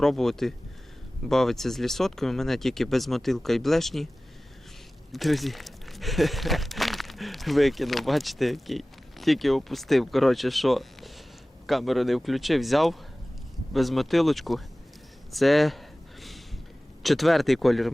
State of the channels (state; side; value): normal; both; correlation 0.97